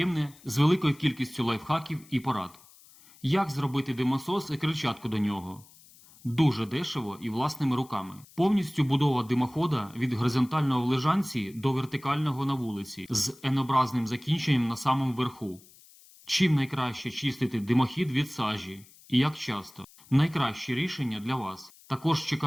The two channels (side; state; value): left; noise; hiss, 25 dB below the sound